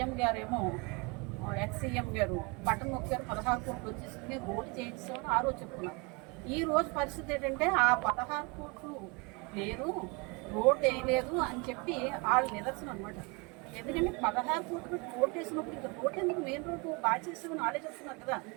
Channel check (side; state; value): left; quieter; 29.1 dB